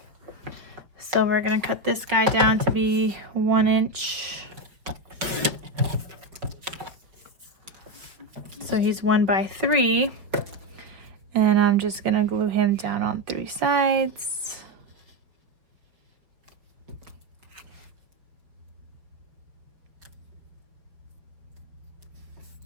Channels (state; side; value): late; left; 5.1 ms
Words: So we're gonna cut this guy down to be 1 inch. So he's 1 by 3. And I'm just gonna glue him down on 3 sides.